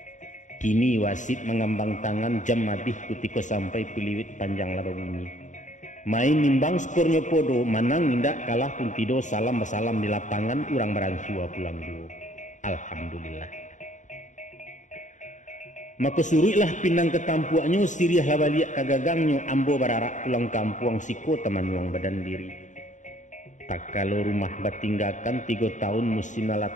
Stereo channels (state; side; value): late; right; 0.36 ms